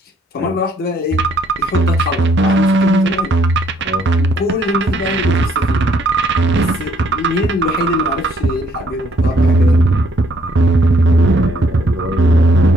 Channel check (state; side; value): normal; both; correlation 0.67